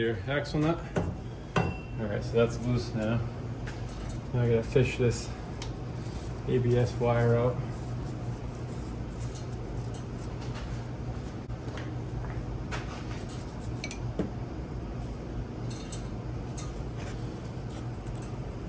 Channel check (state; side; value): identical; both; correlation 1.00